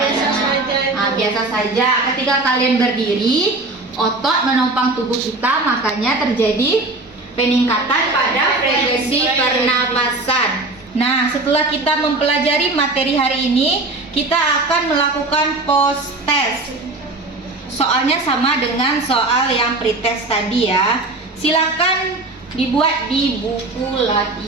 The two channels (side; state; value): left; quieter; 3.1 dB